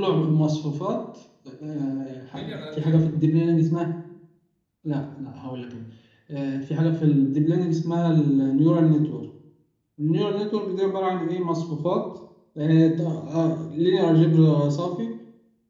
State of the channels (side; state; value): both; identical; correlation 1.00